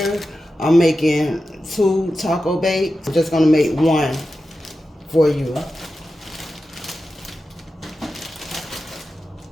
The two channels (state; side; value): normal; both; correlation 0.92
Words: I'm making 2 taco bakes. I'm just gonna make 1 for you.